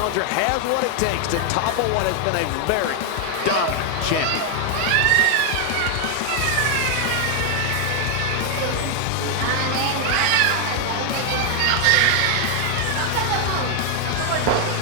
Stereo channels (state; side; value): different; both; correlation 0.00